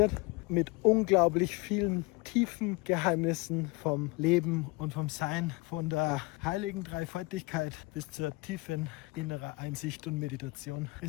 Mit unglaublich vielen tiefen Geheimnissen vom Leben und vom Sein, von der heiligen Dreifaltigkeit bis zur tiefen inneren Einsicht und Meditation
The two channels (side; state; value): right; quieter; 25.1 dB